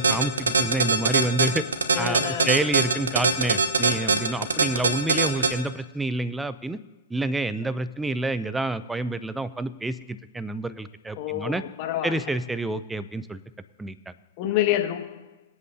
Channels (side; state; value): both; normal; correlation -0.03